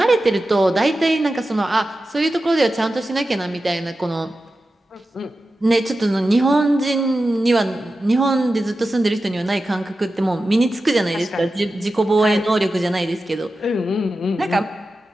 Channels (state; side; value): normal; both; correlation 0.93